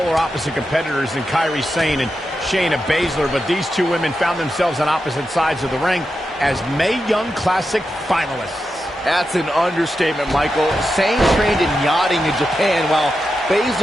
opposite competitors than Kairi Sane and Shayna Baszler, but these two women found themselves on opposite sides of the ring as Mae Young Classic finalists. That's an understatement, Michael. Sane trained in yachting in Japan, while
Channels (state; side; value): normal; both; correlation 0.88